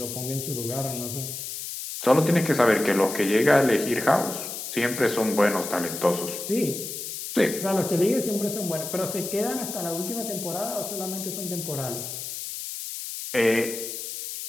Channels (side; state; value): left; noise; hiss, 7 dB below the sound